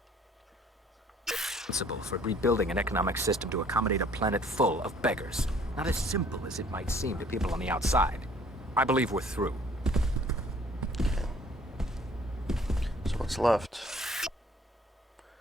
for rebuilding an economic system to accommodate a planet full of beggars. Not as simple as it might seem to people on the outside. I believe we're through. So what's left?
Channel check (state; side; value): normal; both; correlation 0.57